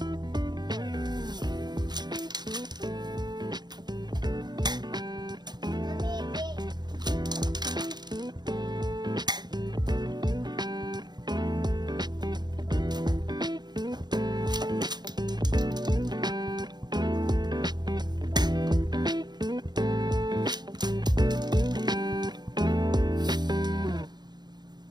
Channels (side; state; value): left; late; 0.20 ms